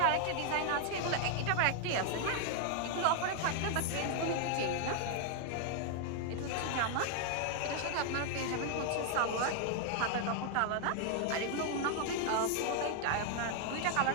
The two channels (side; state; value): both; different; correlation 0.00